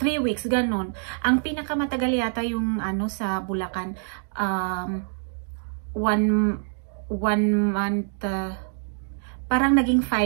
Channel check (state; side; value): silent; left; 62 dB below the other